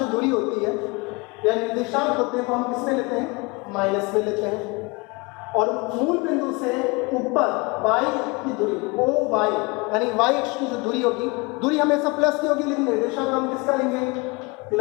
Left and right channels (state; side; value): quieter; right; 27.0 dB